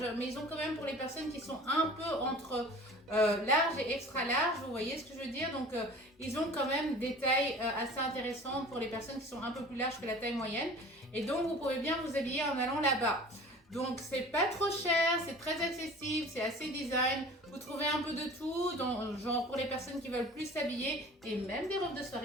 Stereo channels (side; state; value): both; normal; correlation 0.43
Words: mais ils ont quand même pour les personnes qui sont un peu entre large et extra large, vous voyez ce que je veux dire. Donc ils ont quand même des tailles assez intéressantes pour les personnes qui sont un peu plus larges que la taille moyenne. Et donc vous pouvez bien vous habiller en allant là-bas. Donc c'est pas trop cher, c'est très accessible, c'est assez design. Vous trouvez un peu de tout, donc, genre pour les personnes qui veulent plus s'habiller et même des robes de